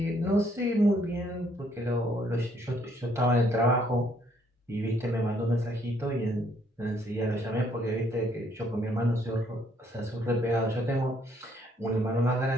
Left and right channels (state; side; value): normal; both; correlation 0.67